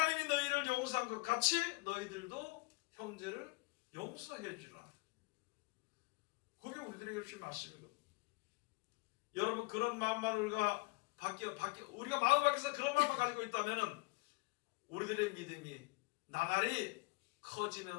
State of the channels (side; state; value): right; quieter; 27.7 dB